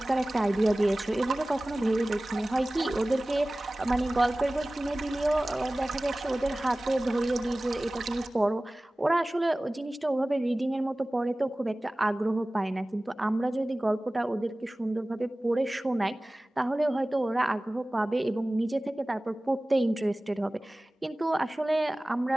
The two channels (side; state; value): both; normal; correlation 0.98